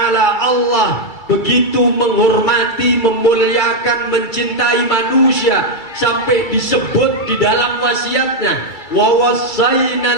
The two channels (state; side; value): late; right; 2.3 ms